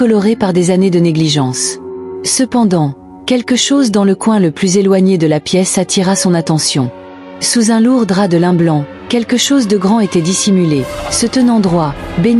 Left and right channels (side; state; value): both; identical; correlation 1.00